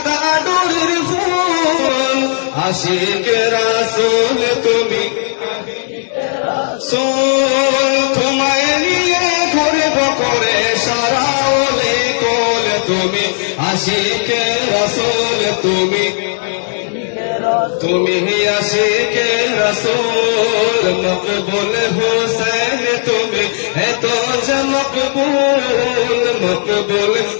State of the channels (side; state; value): right; silent; digital silence